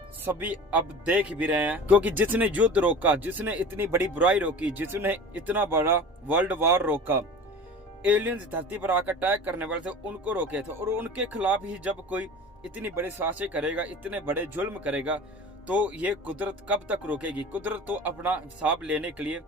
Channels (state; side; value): normal; both; correlation 0.37